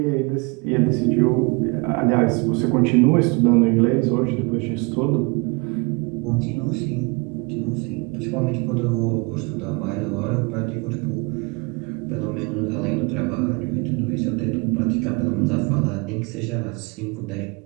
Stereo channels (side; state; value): left; quieter; 28.9 dB